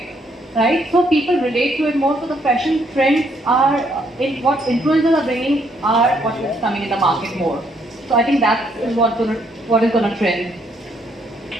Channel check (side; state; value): both; normal; correlation 0.71